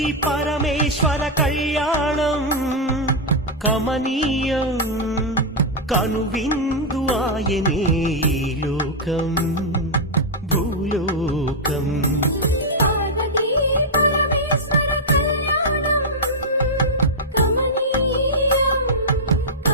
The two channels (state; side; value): normal; both; correlation -0.04